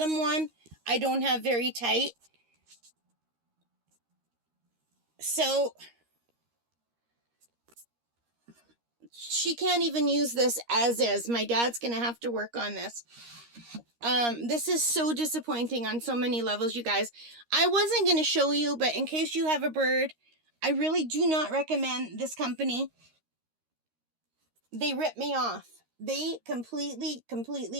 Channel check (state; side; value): late; left; 13 ms